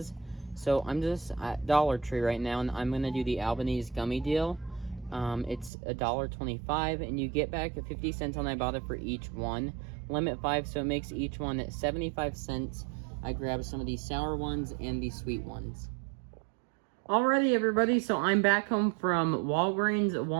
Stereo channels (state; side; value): drops out; left; at 5.7 s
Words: So I'm just at Dollar Tree right now, and I'm going to do the Albanese gummy deal. It's $1.25, and you get back 50 cents on Ibotta for each one. Limit 5, so it makes each one at 75 cents. I grabbed some of these sour ones and these sweet ones. Alrighty, everybody, so I'm back home from Walgreens,